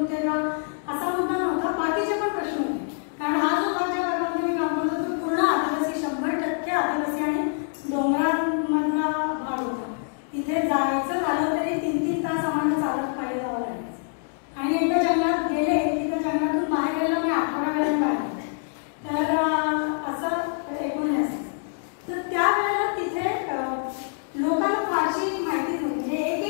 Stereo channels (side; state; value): right; silent; 61 dB below the other